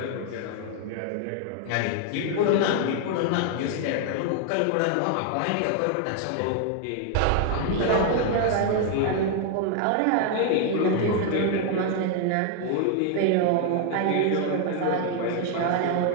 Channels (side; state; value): both; different; correlation 0.00